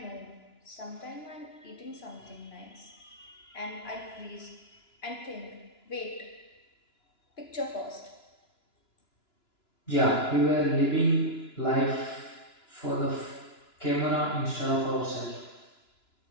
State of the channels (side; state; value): right; late; 2.9 ms